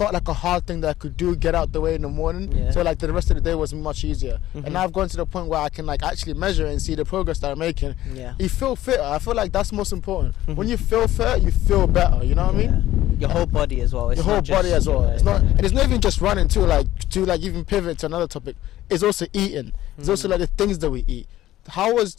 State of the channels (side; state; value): right; quieter; 14.4 dB